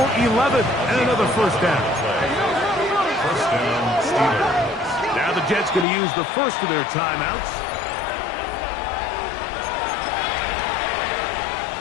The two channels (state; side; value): drops out; right; at 5.9 s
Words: 11 and another first down. First down, Steelers. Now the Jets going to use the first of their timeouts.